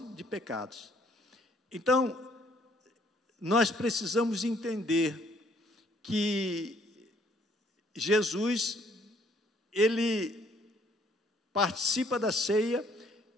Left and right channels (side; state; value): both; normal; correlation 0.63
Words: de pecados. Então, nós precisamos entender que Jesus, ele participa da ceia,